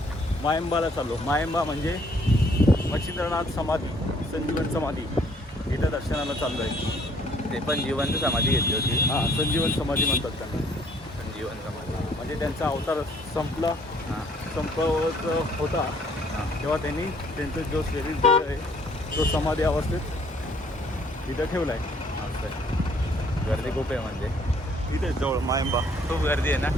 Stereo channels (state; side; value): normal; both; correlation 0.62